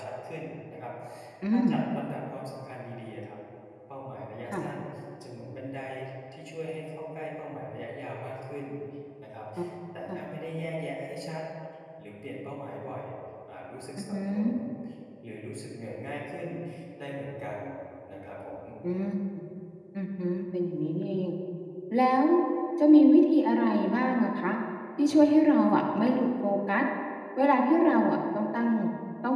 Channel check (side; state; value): both; identical; correlation 1.00